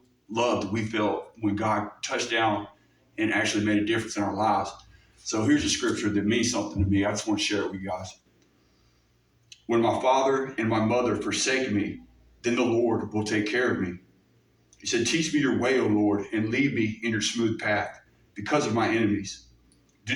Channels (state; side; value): identical; both; correlation 1.00